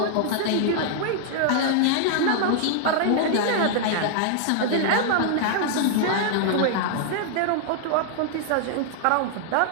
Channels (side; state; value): both; different; correlation -0.01